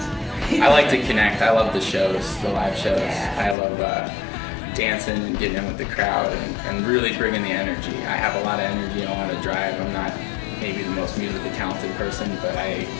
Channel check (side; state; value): right; drops out; at 3.6 s